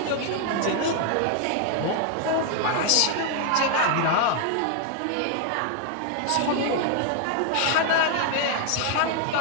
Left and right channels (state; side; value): different; both; correlation 0.00